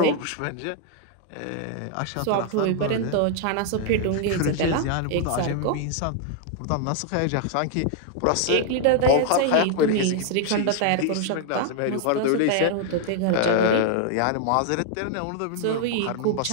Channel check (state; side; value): different; both; correlation 0.00